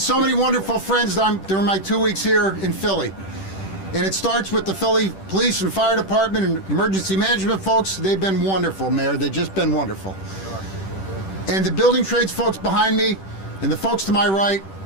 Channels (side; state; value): right; late; 10 ms